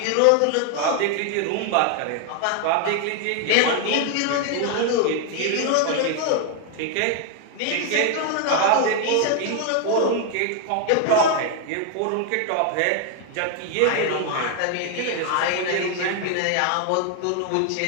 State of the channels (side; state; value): both; different; correlation 0.00